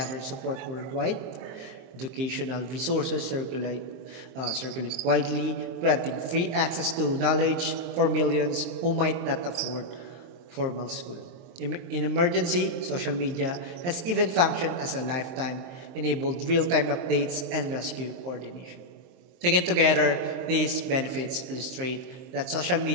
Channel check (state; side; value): late; left; 23 ms